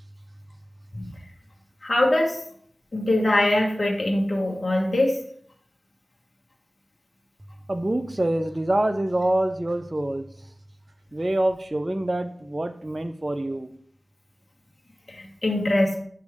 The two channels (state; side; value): normal; both; correlation 0.96